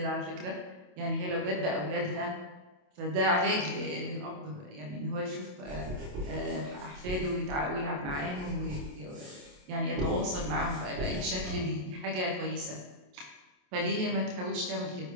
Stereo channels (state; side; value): late; left; 27 ms